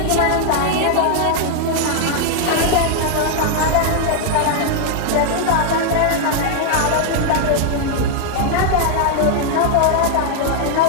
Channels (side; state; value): both; different; correlation 0.00